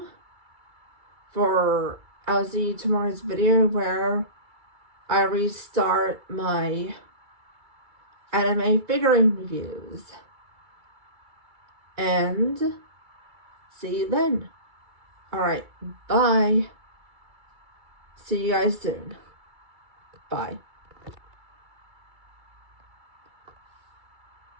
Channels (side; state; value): left; late; 2.3 ms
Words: tomorrow's video where I restart my anime figurine reviews. And see you then. Alright, bye. See you guys soon. Bye.